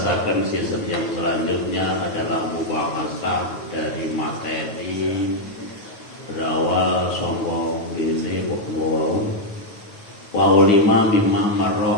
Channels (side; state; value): right; late; 9.3 ms